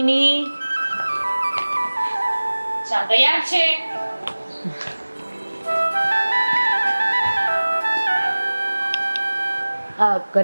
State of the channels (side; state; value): both; inverted; correlation -1.00